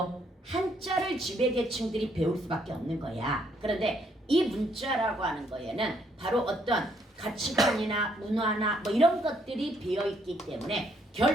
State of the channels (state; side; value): normal; both; correlation 0.70